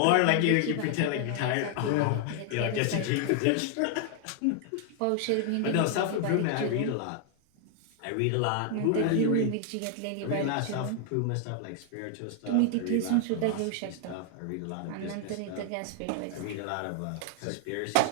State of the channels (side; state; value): both; different; correlation 0.00